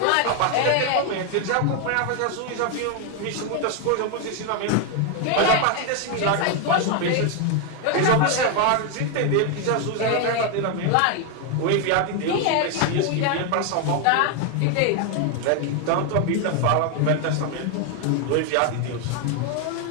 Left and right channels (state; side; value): different; both; correlation 0.01